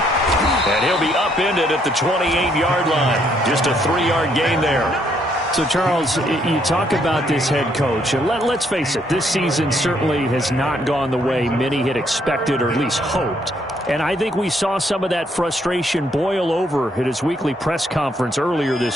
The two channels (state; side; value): normal; both; correlation 0.71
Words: And he'll be upended at the 28-yard line. Just a 3-yard gain there. So, Charles, you talk about this head coach, and let's face it, this season certainly has not gone the way many had expected or at least hoped. And I think we saw some of that frustration boil over at his weekly press conference earlier